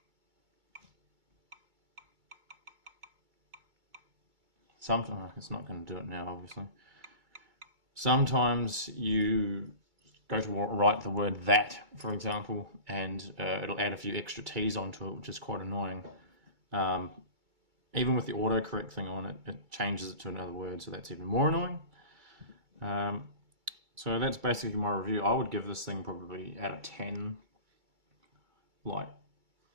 Sometimes, it's not going to do it now, obviously. Sometimes you go to write the word that, for example, and it'll add a few extra T's onto it, which is quite annoying. Even with the autocorrect thing on it, it changes it to another word, so that's even more annoying. So that's basically my review. I would give this thing probably out of 10. Like,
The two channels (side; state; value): left; late; 2.3 ms